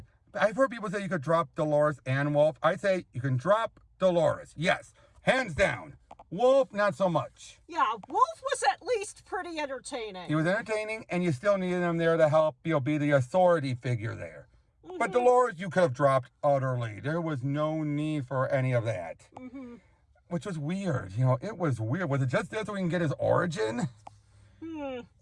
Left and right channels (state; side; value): identical; both; correlation 1.00